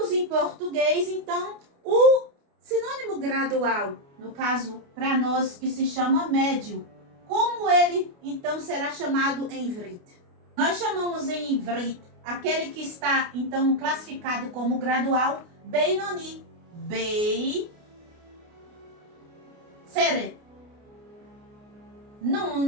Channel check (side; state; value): left; late; 29 ms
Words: em português, então, o sinônimo gradual. No caso, para nós, que se chama médio. Como ele, então, será chamado em ivrit? Nós chamamos em ivrit aquele que está, então, classificado como gradual, Beinoni. Seret.